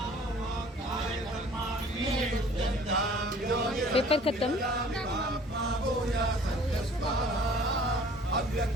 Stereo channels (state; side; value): normal; both; correlation 0.52